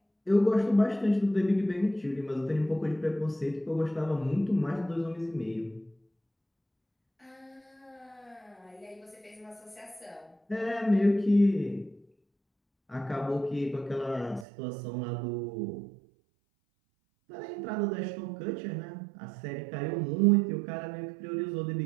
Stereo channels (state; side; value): drops out; left; at 14.5 s